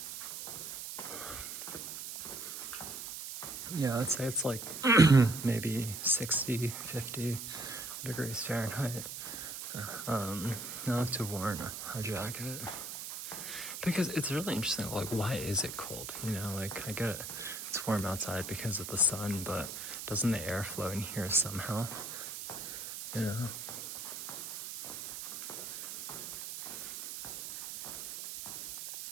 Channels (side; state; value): right; noise; hiss, 7 dB below the sound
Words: Yeah, I'd say it's like maybe 60, 50 degrees Fahrenheit. I have to wear a jacket. Because it's really interesting, like, why is it cold? You know, like, I get it's warm outside because of the sun, but doesn't the air flow in here somehow? You know?